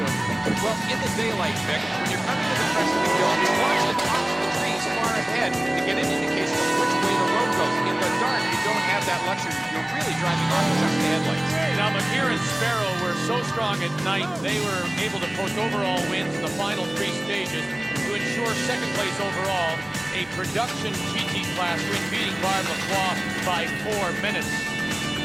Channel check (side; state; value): right; noise; rumble, 28 dB below the sound